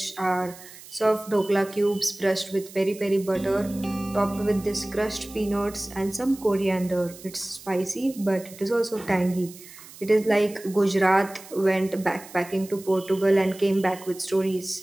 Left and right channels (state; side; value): noise; right; hiss, 18 dB below the sound